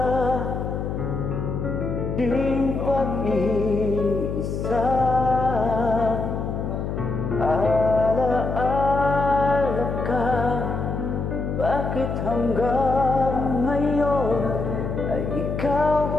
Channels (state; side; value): noise; left; hum, 3 dB below the sound